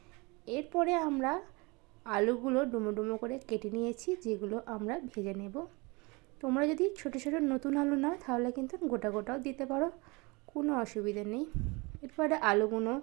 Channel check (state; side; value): quieter; left; 26.6 dB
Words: এরপরে আমরা আলুগুলো ডুমো ডুমো করে কেটে নিয়েছি, যেগুলো আমরা ভেজে নেব। তোমরা যদি ছোটো ছোটো নতুন আলু নাও তাহলে কিন্তু গোটা গোটাও দিতে পারো, কোনো অসুবিধা নেই। এরপরে আলুগুলো